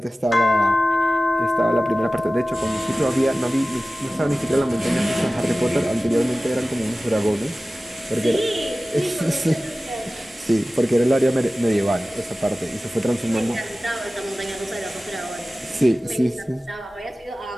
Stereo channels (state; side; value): normal; both; correlation 0.96